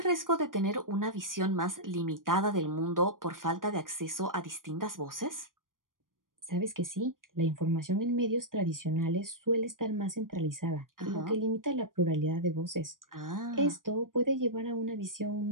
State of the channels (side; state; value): left; late; 0.90 ms